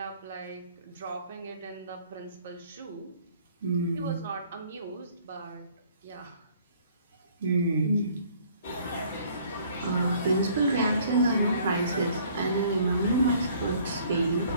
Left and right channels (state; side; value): inverted; both; correlation -0.57